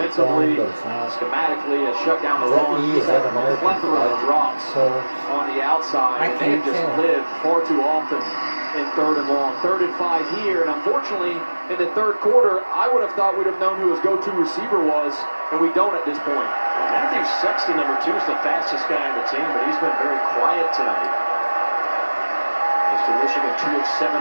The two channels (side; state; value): both; inverted; correlation -1.00